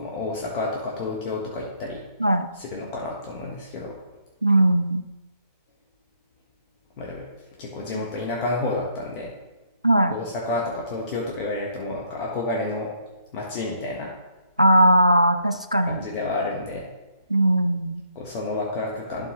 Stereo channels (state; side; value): inverted; both; correlation -0.69